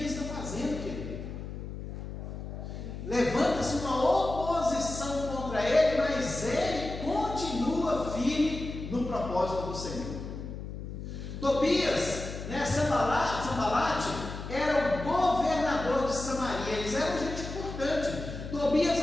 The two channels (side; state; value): left; noise; hum, 8 dB below the sound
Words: está fazendo, querido. Levanta-se uma oposição contra ele, mas ele continua firme no propósito do Senhor. Tobias, né, Sanbalate, era o governador de Samaria. Eles eram gente importante. Tobias